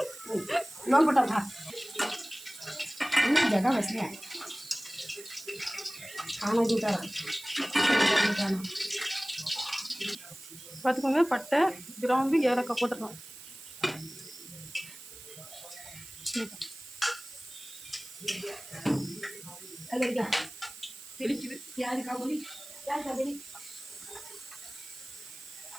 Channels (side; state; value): right; noise; hiss, 16 dB below the sound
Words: லோன் போட்டா ஜகா வசதியா பார்த்துக்கோங்க. பட்டை, கிராம்பு, ஏலக்காய் போட்டுக்கலாம். தெளிக்குது.